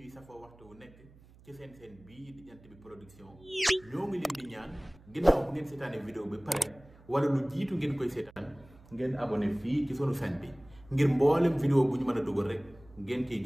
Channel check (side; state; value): right; noise; hum, 24 dB below the sound